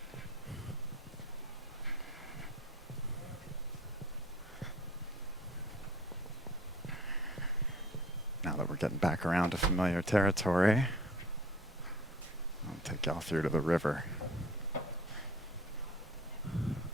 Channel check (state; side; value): normal; both; correlation 0.49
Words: Now that we're getting back around to familiar territory, I'll take y'all through to the river.